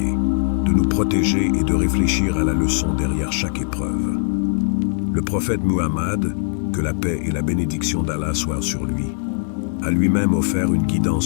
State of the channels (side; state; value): right; silent; digital silence